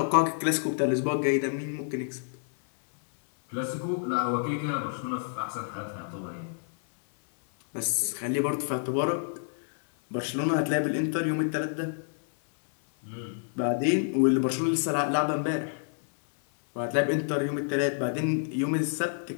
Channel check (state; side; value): silent; right; 59 dB below the other